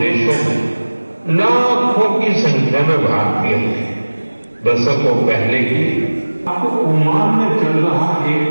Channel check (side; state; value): both; inverted; correlation -1.00